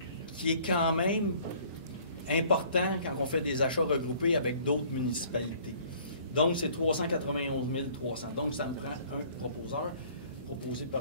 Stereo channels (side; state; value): both; inverted; correlation -0.55